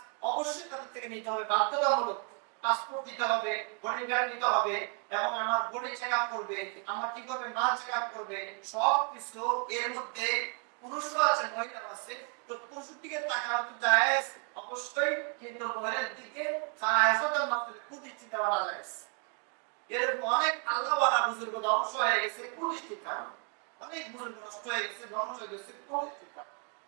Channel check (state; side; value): quieter; left; 39.9 dB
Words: অবশ্যই তাদের থেকে নিতে হবে বাধ্যতামূলক। পাসপোর্ট দিতে হবে, বডি গার্ড নিতে হবে, এবং আমার বডি চেক আপ করবে, আমার কি করবে মা চেক আপ করবে, সব কিছু এর মধ্যে পুরুষও আছে মহিলা আছে। তো পুরুষের দিকে তাকানো তো জায়েজ অবশ্যই, কিন্তু মহিলার দিকে জায়েজের মাধ্যমে কুদৃষ্টি দেওয়া জায়েজ। এরকম অনেক আল্লাহওয়ালা বুজুর্গ ধ্বংস হয়ে গেছে কুদৃষ্টির কারণে, অনেক বুজুর্গ নষ্ট হয়ে গেছে ধ্বংস হয়ে গেছে কুদৃষ্টির কারণে।